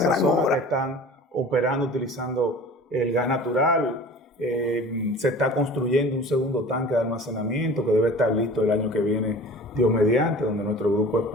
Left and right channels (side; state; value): both; normal; correlation 0.42